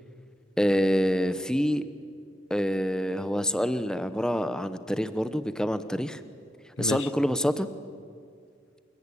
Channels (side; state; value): both; normal; correlation 0.88